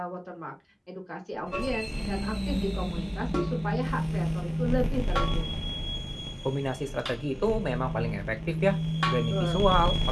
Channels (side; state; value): both; identical; correlation 1.00